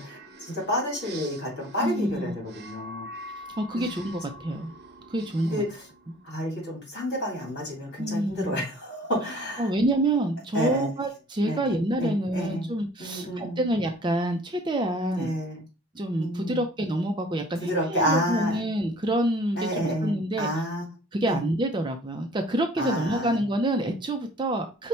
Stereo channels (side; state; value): both; normal; correlation 0.51